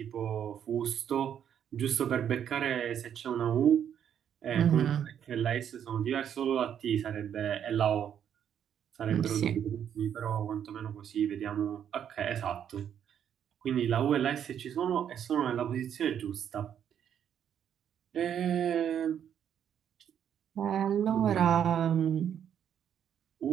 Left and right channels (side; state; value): left; quieter; 9.1 dB